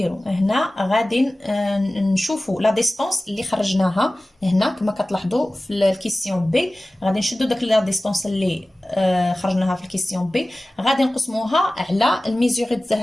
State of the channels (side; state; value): both; normal; correlation 0.97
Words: هنا غادي نشوفوا لا ديستونس اللي خرجناها هنا كما كتلاحظوا في الكيسيون بي. غادي نشدوا داك لا ديستونس اللي خرجناها في الكيسيون بي غادي نقسموها على الميزوري ديال